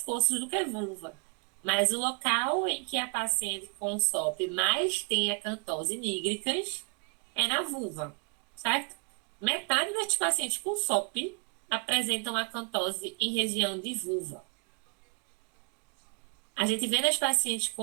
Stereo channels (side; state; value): left; quieter; 33.9 dB